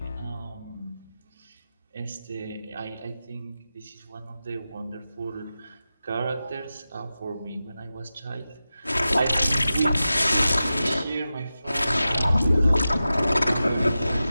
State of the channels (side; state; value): both; inverted; correlation -0.93